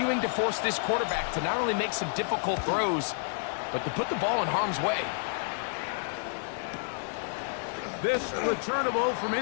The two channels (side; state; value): right; silent; digital silence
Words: to force this quarterback to not only make some difficult throws, but to put the ball in harm's way. This returnable from